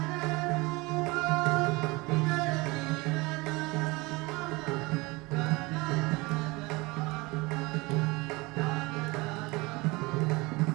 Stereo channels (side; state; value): left; quieter; 23.9 dB